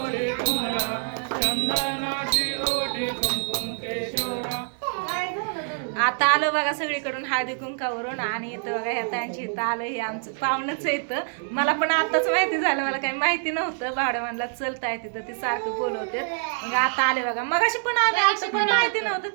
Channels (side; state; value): left; silent; 61 dB below the other